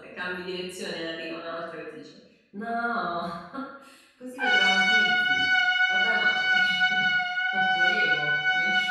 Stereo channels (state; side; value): identical; both; correlation 1.00